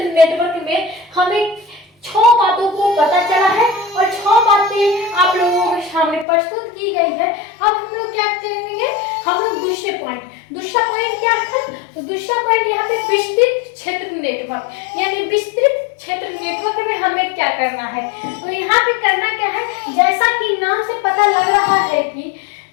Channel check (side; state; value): right; drops out; at 6.2 s